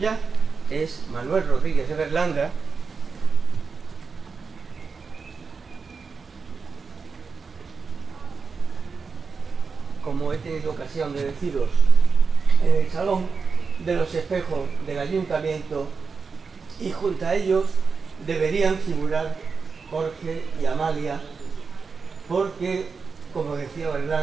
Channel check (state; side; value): quieter; left; 5.1 dB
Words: es Manuel Rodríguez de Berlanga. Como he tenido ocasión de deciros, en el Salón de los Espejos del Ayuntamiento, y junto a ellos deberían figurar Jorge y Amalia, porque, como decía